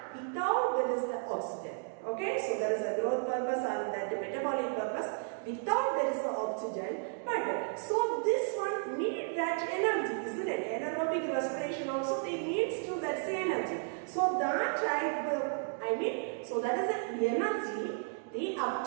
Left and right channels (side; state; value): left; silent; 55 dB below the other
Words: without there is the oxygen. Okay, so there is a growth purpose and that metabolic purpose. Without there is the oxygen, but so this one need that energy, isn't it? Anaerobic respiration also they needs to that energy. So that type, so that is the energy they